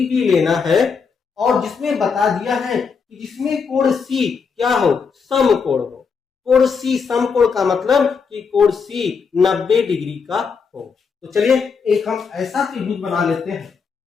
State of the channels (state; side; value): quieter; right; 5.6 dB